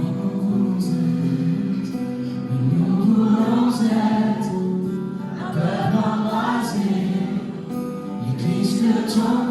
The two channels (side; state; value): both; identical; correlation 1.00